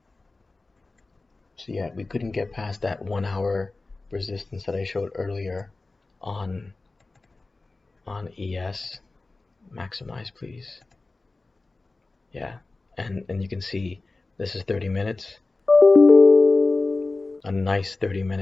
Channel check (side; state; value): right; quieter; 3.4 dB